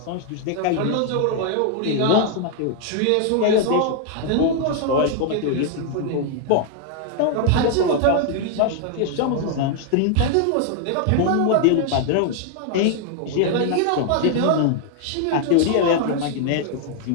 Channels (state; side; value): different; both; correlation 0.00